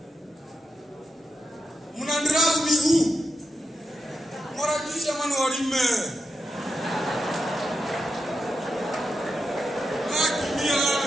Mnandragu miguu. Mara kisha manu walime. Akimia.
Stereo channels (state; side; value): normal; both; correlation 0.87